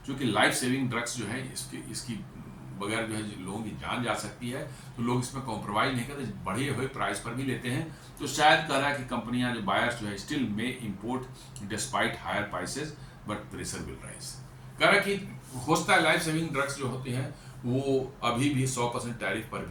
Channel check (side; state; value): both; identical; correlation 1.00